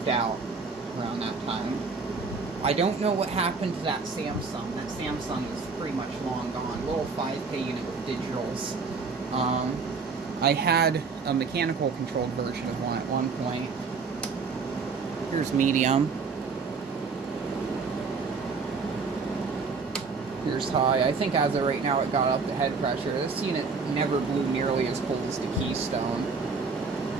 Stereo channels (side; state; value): left; quieter; 4.7 dB